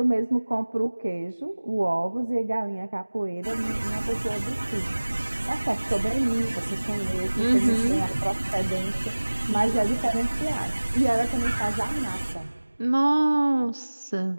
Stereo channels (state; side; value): inverted; both; correlation -1.00